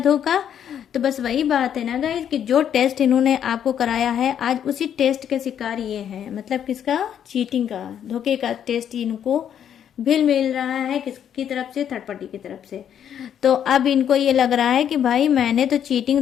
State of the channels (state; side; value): quieter; right; 9.3 dB